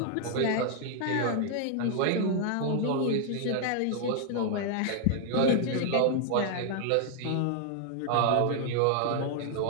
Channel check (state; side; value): different; both; correlation 0.00